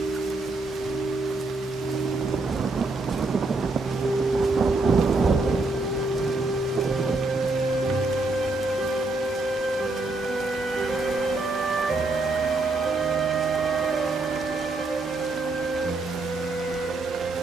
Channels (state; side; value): quieter; left; 3.2 dB